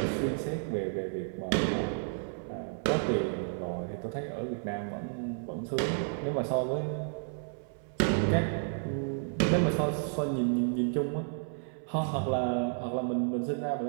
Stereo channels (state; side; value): silent; left; 57 dB below the other